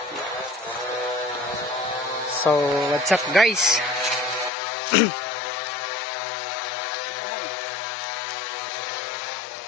So, what's up guys?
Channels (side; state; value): right; drops out; at 4.5 s